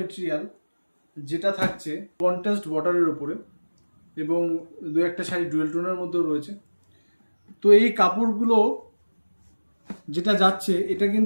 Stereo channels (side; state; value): both; inverted; correlation -1.00